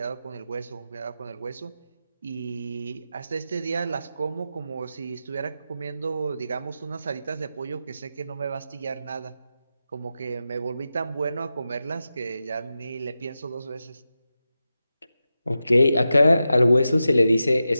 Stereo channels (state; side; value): inverted; both; correlation -0.91